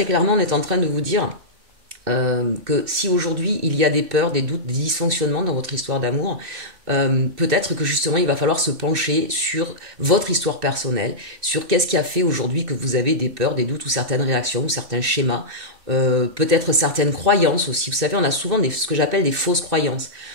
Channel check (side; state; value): left; late; 2.6 ms